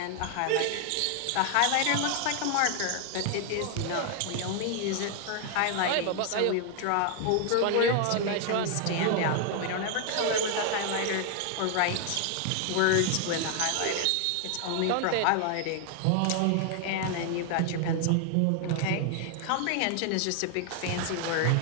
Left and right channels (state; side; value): different; both; correlation 0.00